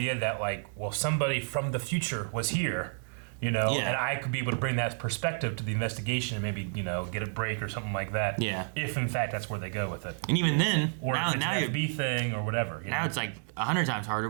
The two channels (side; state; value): left; silent; digital silence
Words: that somebody from the future was here, and I could be able to bring that perspective to the investigation and maybe get a break or something like that. Yeah. If in fact that's where they go with it, And even then, or now, if it's now an you're- FB thing or whatever. now it's like 100 times harder